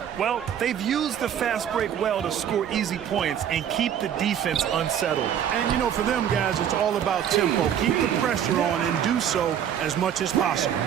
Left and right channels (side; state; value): left; quieter; 9.3 dB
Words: Well, they've used the fast break well to score easy points and keep the defense unsettled. And, you know, for them guys, it's all about tempo. Keep the pressure on and do so as much as possible.